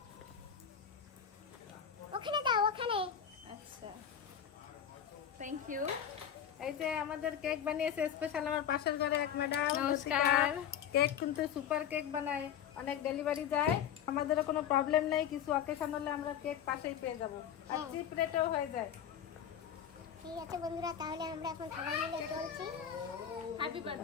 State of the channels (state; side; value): quieter; right; 9.0 dB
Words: ওখানে দাও, ওখানে। আচ্ছা, থ্যাংক ইউ। এই যে আমাদের কেক বানিয়েছে স্পেশাল আমার পাশের ঘরে এক ম্যাডাম। নমস্কার। কেক কিন্তু সুপার কেক বানায়, অনেক ডেলিভারি যায়। আমাদেরও কোনো প্রবলেম নেই, কিছু অকেশন হলে আমরা কেক পাশেই পেয়ে যাবো, আর চিপ রেটেও হয়ে যায়। ঠিক আছে বন্ধুরা, তাহলে আমরা এখন সবাই মিলে চলছি। Happy